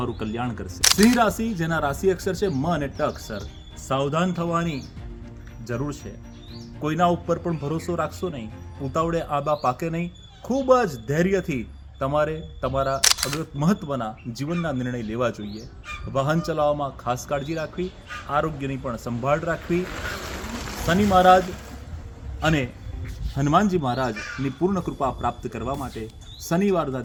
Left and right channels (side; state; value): both; identical; correlation 1.00